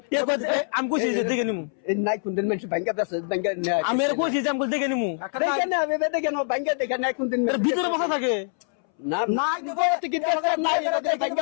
এ কই আমি কইছি যে দেখে নিমু এ নাই কোন দিন মানুষ ব্যাংকে আছে ব্যাংকে আমি এর কইছি যে আমি দেখে নিমু দেখে না আমি দেখে না ব্যাংকে দেখে নাই কোন দিন ভিতরে বসা থাকে না নাই দেবো নাই দেখে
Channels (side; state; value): right; silent; 62 dB below the other